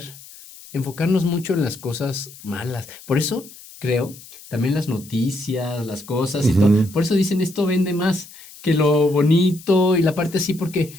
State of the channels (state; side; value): noise; left; hiss, 19 dB below the sound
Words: enfocarnos mucho en las cosas malas. Por eso creo, también las noticias, las cosas y todo, Ujú. por eso dicen esto vende más que lo bonito y la parte así,